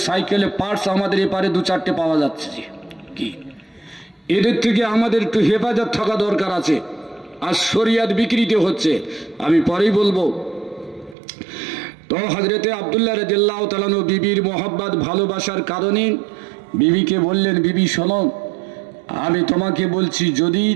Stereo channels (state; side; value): drops out; left; at 11.2 s